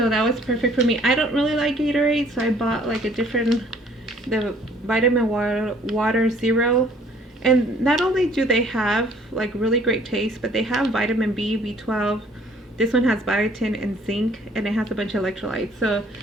that was perfect for me. I don't really like Gatorade, so I bought like the vitamin water zero. And not only do they have like really great taste, but they have vitamin B, B12. This one has biotin and zinc, and it has a bunch of electrolytes. So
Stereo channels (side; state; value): both; normal; correlation 0.58